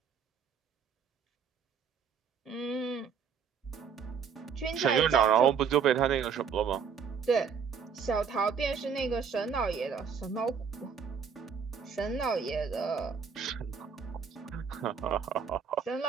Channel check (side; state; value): left; quieter; 6.6 dB